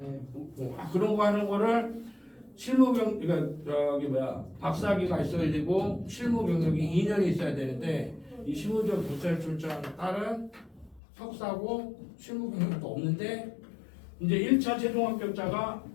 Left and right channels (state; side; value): drops out; right; at 11.0 s